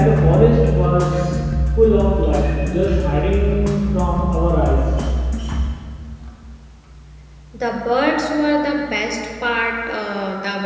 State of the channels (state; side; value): identical; both; correlation 1.00